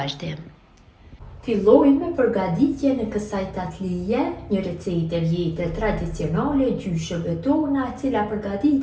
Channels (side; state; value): both; identical; correlation 1.00